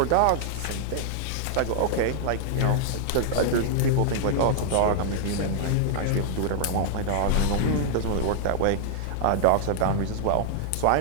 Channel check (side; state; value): both; different; correlation -0.01